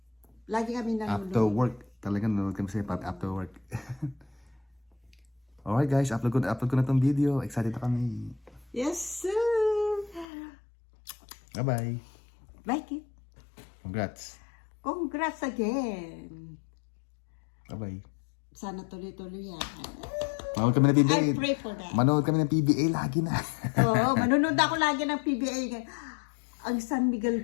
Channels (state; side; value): drops out; right; at 10.2 s